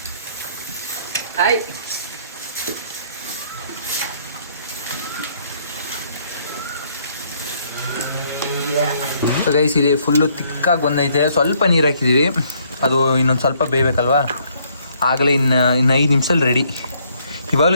ಹಾಯ್ ಸೊ ಗೈಸ್ ಇಲ್ಲಿ ಫುಲ್ಲು ತಿಕ್ಕಾಗಿ ಬಂದೈತೆ. ಸ್ವಲ್ಪ ನೀರು ಹಾಕಿದ್ದೀವಿ, ಅದು ಇನ್ನೊಂದು ಸ್ವಲ್ಪ ಬೇಯಬೇಕಲ್ವಾ, ಆಗಲೇ ಇನ್ನು 5 ನಿಮಿಷದಲ್ಲಿ ರೆಡಿ.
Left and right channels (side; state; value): both; inverted; correlation -0.67